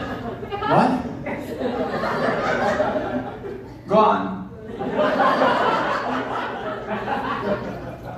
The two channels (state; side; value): identical; both; correlation 1.00